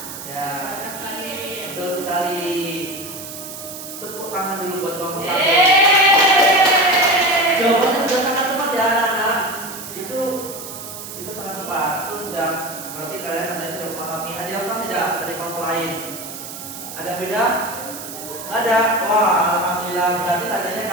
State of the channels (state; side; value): noise; right; hiss, 11 dB below the sound